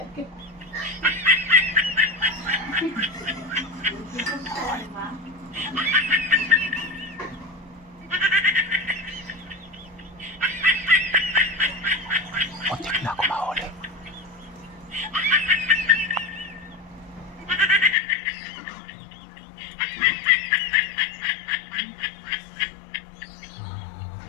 Muntik na ako mahuli.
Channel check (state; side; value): drops out; right; at 17.9 s